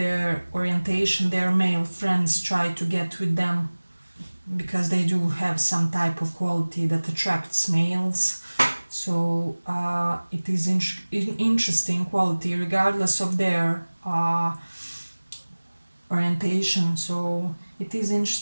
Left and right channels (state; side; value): inverted; both; correlation -1.00